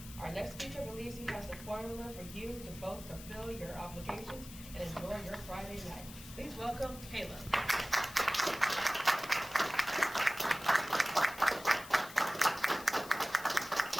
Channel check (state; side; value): noise; left; hiss, 15 dB below the sound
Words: Our next speaker believes he has the formula for you to both fulfill your obligations and enjoy your Friday night. Please welcome Caleb.